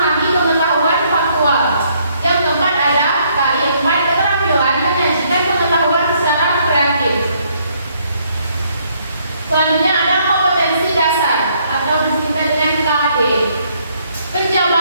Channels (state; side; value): inverted; both; correlation -0.68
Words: pengetahuan faktual. Yang keempat ada KI 4, keterampilan menyajikan pengetahuan secara kreatif. Selanjutnya ada kompetensi dasar atau disingkat dengan KD.